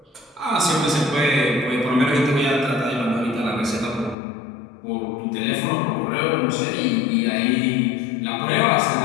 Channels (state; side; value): drops out; right; at 4.2 s